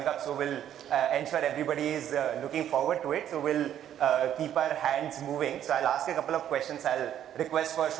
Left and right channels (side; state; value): left; quieter; 10.6 dB